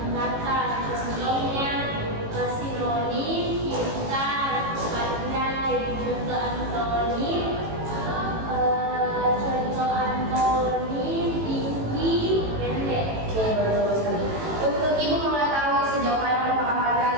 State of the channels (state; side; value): late; left; 18 ms